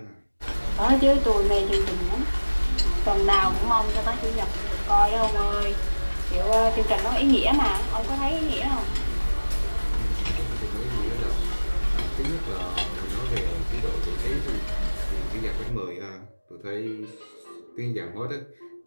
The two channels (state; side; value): inverted; both; correlation -1.00